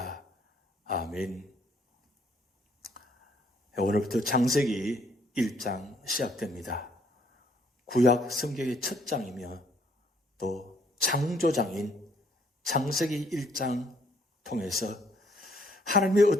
아멘. 오늘부터 창세기 1장 시작됩니다. 구약 성경의 첫 장이며 또 창조장인 창세기 1장 통해서 하나님이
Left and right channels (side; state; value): both; normal; correlation 0.66